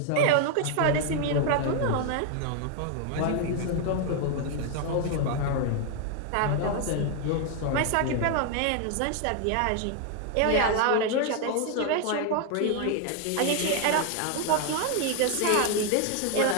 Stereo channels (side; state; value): both; different; correlation 0.01